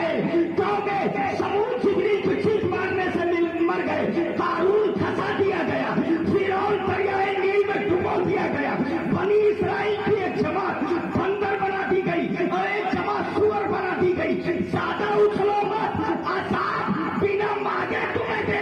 कौमे समूद जिब्रील की चीख मारने से मर गए। कारून फंसा दिया गया, फिरौन दरियाए नील में डुबो दिया गया। बनी इसराइल की एक जमात बंदर बना दी गई और एक जमात सुअर बना दी गई। ज्यादा उछलो मत, अज़ाब बिना मांगे तुम्हें दे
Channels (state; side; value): identical; both; correlation 1.00